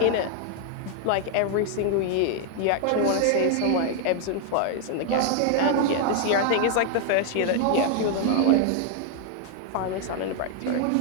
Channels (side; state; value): both; different; correlation 0.00